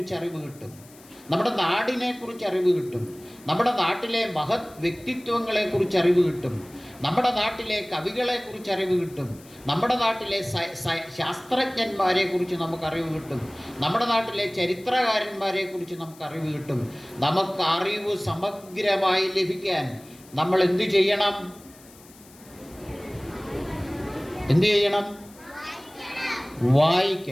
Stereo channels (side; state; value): left; noise; hiss, 24 dB below the sound